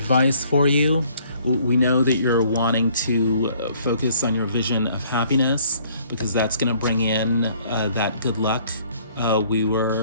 for you. We know that you're wanting to focus on your vision of happiness because that's going to bring in that good luck we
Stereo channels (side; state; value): both; inverted; correlation -0.60